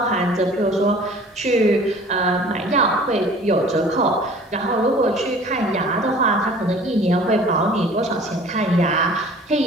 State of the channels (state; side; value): normal; both; correlation 0.48